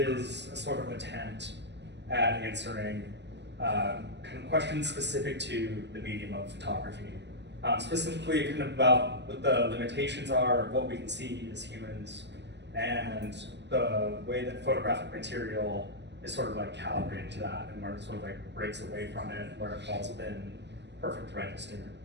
a sort of attempt at answering kind of questions specific to the medium of photography. Specifically kind of about what the limitations are of what we can see as humans and the way that photographic material is sort of like calibrated to that and where it sort of like breaks away from it, where it falls within perfect register.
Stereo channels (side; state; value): left; late; 0.51 ms